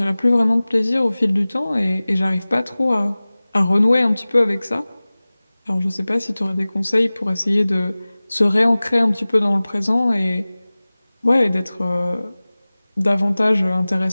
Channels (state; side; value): inverted; both; correlation -0.99